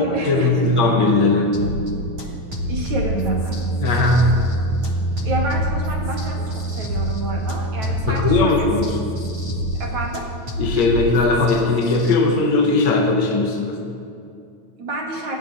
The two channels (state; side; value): late; left; 8.9 ms